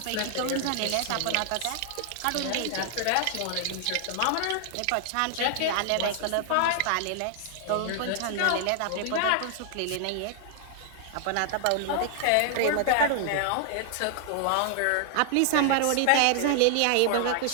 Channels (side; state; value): both; different; correlation 0.00